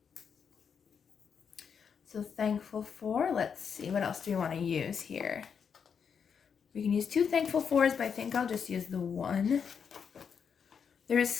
So thankful for, let's see, what else do we want to use here? We can use 2 thankful fors, but I think I'll just use the 1. There's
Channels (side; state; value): right; quieter; 6.8 dB